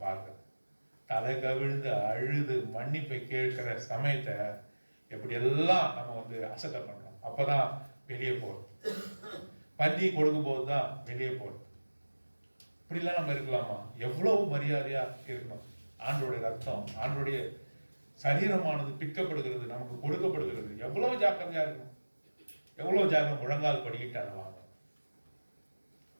பார்க்கிறேன். தலை கவிழ்ந்து அழுது மன்னிப்பை கேட்கிற சமயத்தை எப்படியெல்லாம் நம்ம அசட்டை பண்றோம். அப்பதான் வெளியே போறது. பந்தி கொடுக்கும் போது தான் வெளியே போறது. இப்படிலாம் நம்ம இருக்கலாமா? எவ்வளவு மரியாதையா இருக்கணும். ஆண்டோடைய ரத்தம், ஆண்டோடைய சரீரமானது பிற்கப்படுகிறது, நமக்கு கொடுக்கப்படுகிறது. எவ்வளவு ஜாக்கிரதையா இருக்கணும். எவ்வளவு ஜாக்கிரம். முழங்கால் படிக்கிட்டு அதை வாங்க.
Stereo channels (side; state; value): both; inverted; correlation -1.00